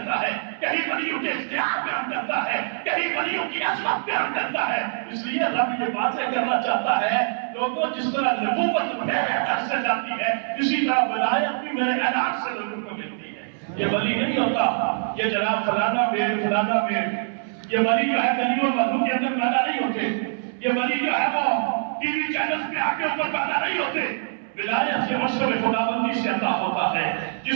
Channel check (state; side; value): silent; left; 63 dB below the other